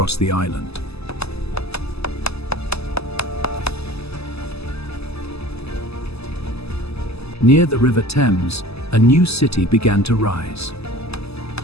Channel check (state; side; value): late; right; 0.79 ms